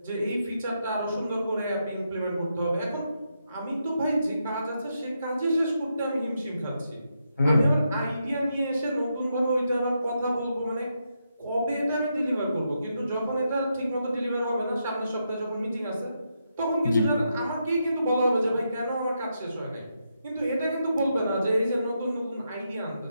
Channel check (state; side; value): inverted; both; correlation -0.82